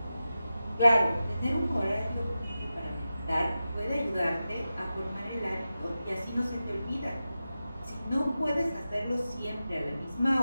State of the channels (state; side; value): inverted; both; correlation -0.93